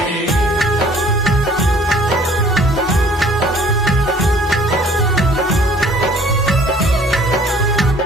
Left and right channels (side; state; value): both; normal; correlation 0.54